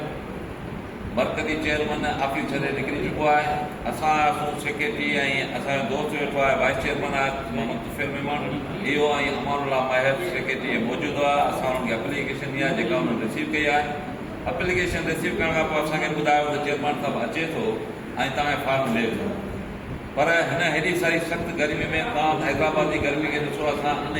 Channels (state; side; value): identical; both; correlation 1.00